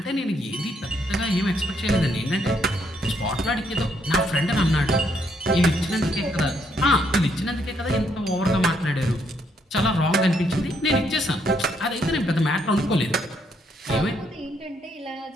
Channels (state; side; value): normal; both; correlation 0.73